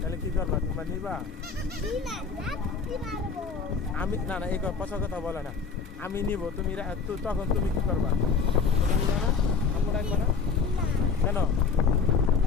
কি করবা? তোমরা নিবা? আমি না না, এই পচা কথা বলে না। আমি নিব, তুমি তখন তুমি কি করবা? তুমি নিবা না? আম্মু ডাকবা না কেন?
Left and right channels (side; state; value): right; quieter; 5.2 dB